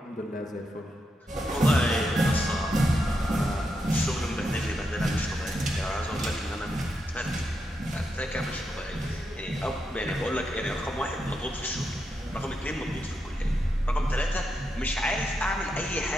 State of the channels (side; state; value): both; normal; correlation 0.84